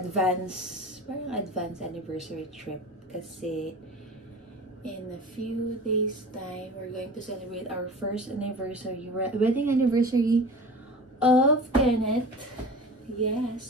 anniversary trip. Kasi in a few days time, we're going to celebrate our first anniversary, wedding anniversary of Kenneth.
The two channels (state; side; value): normal; both; correlation 0.36